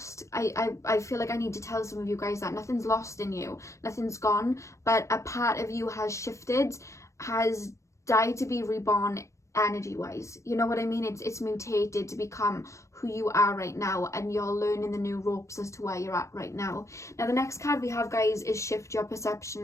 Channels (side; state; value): right; late; 0.14 ms